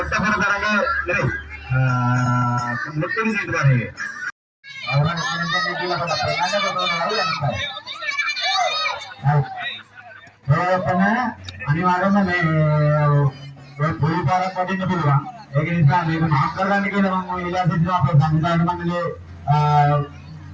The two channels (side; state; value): both; identical; correlation 1.00